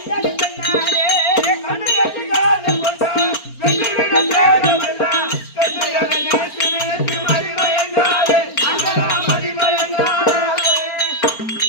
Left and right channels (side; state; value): right; late; 4.4 ms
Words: பெண்ணாலே. கண்டு கண்டு காதல் கொண்டார், வெற்றி விடு தேகமெல்லாம் பெண்டுகளை நினைத்து நினைத்து மதி மயங்காதே அங்கலா மதி மயங்காதே.